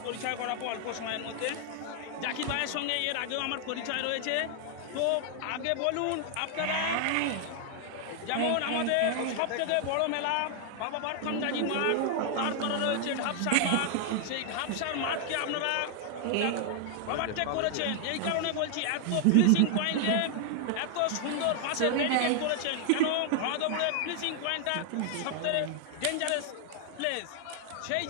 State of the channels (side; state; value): both; different; correlation 0.00